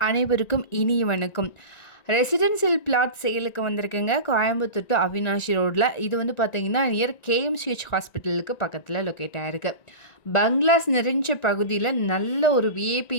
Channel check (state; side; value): late; right; 1.9 ms